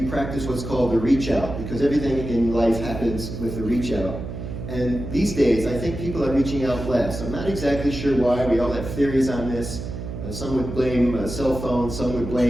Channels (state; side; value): noise; right; hum, 7 dB below the sound